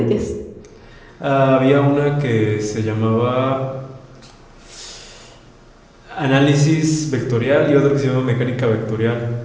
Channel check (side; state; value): both; identical; correlation 1.00